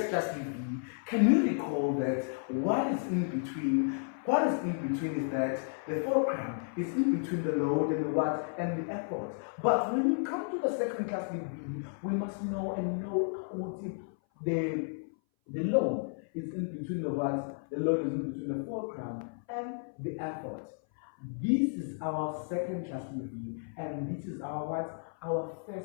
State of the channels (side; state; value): right; silent; 56 dB below the other